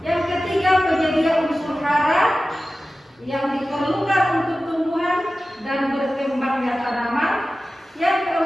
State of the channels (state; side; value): normal; both; correlation 0.95